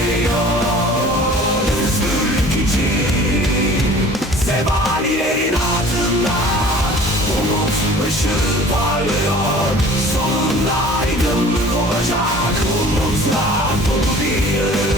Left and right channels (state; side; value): normal; both; correlation 0.47